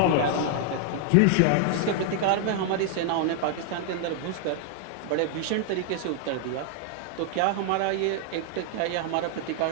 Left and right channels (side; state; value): both; different; correlation 0.00